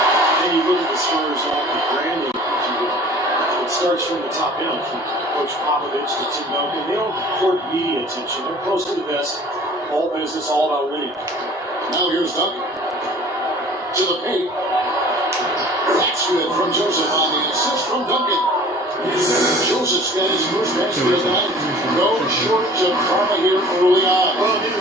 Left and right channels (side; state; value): both; normal; correlation 0.47